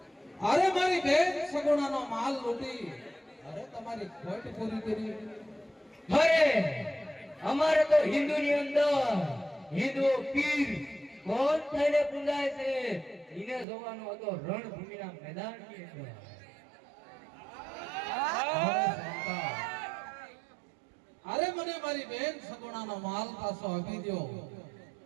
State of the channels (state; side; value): drops out; left; at 13.7 s